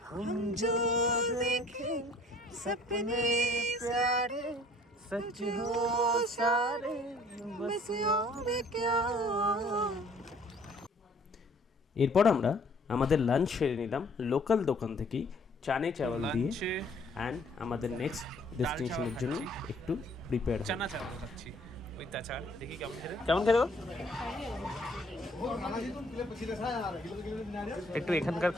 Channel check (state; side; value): normal; both; correlation 0.57